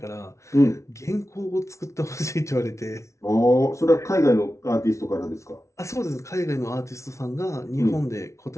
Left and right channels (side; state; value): right; late; 0.14 ms